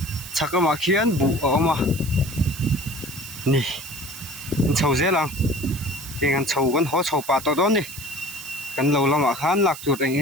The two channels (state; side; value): noise; right; hiss, 12 dB below the sound